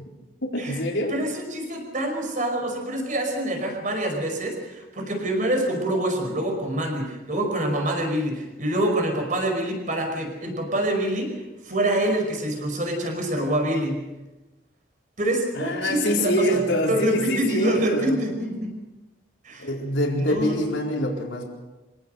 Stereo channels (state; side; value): normal; both; correlation 0.32